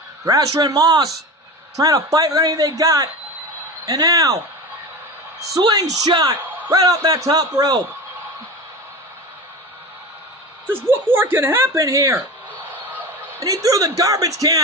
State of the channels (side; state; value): both; normal; correlation 0.28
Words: Thrasher and Moss trying to fight with anything they got. And now, slingshot right off that top rope. Just what more can happen here? And he threw the garbage